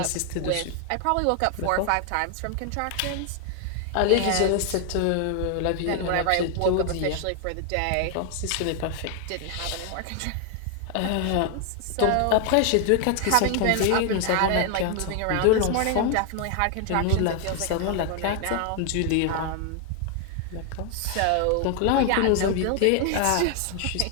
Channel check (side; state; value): both; different; correlation 0.00